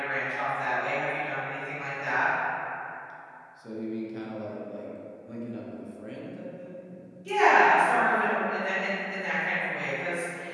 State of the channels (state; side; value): identical; both; correlation 1.00